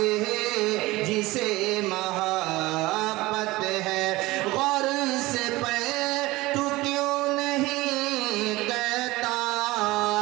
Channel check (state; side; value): quieter; left; 20.0 dB